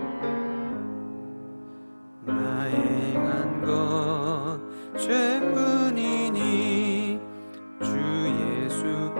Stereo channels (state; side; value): inverted; both; correlation -1.00